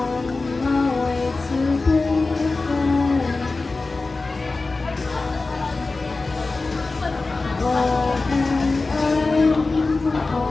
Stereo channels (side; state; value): right; quieter; 3.6 dB